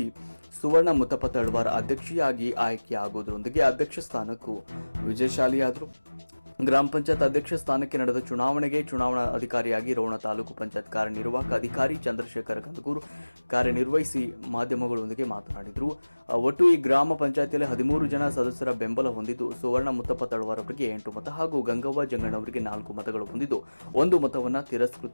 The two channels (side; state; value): both; inverted; correlation -1.00